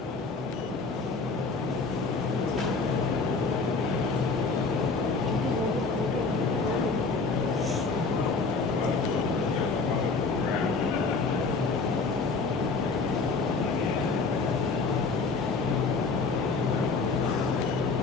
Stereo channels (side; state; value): right; quieter; 4.2 dB